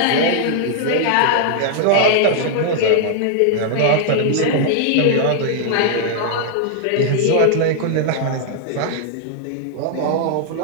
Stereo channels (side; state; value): both; different; correlation -0.01